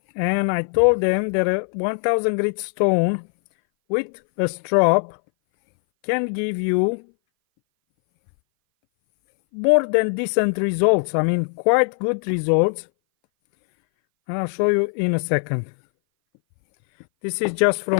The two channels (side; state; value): right; silent; 60 dB below the other